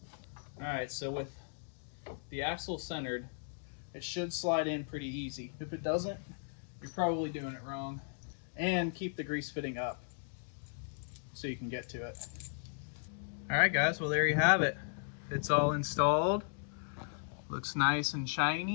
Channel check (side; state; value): right; silent; digital silence